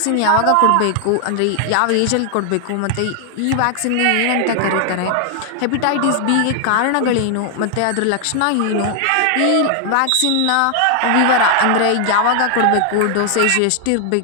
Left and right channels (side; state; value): both; different; correlation 0.00